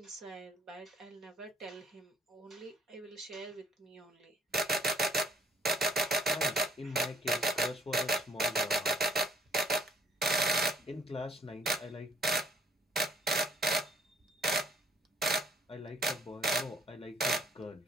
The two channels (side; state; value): both; normal; correlation 0.62